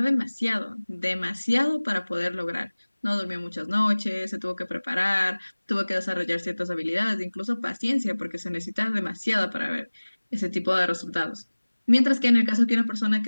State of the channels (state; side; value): inverted; both; correlation -1.00